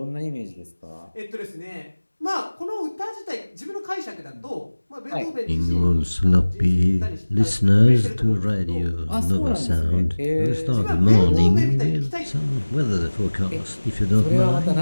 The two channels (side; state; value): both; inverted; correlation -1.00